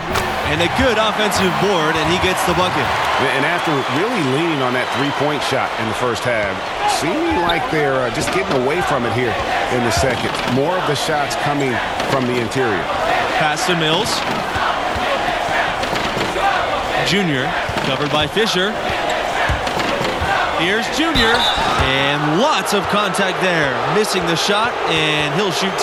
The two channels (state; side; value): identical; both; correlation 1.00